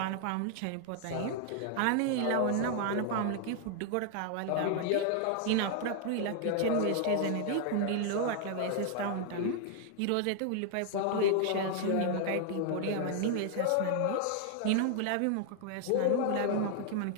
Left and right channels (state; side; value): different; both; correlation 0.00